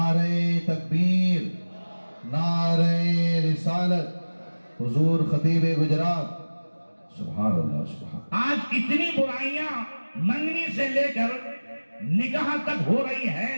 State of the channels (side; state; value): both; inverted; correlation -1.00